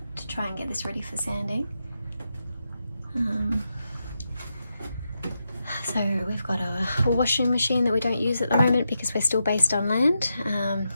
to try and get this ready for sanding. So we've got a washing machine that we don't use at the moment because we're still based on land.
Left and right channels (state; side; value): inverted; both; correlation -0.85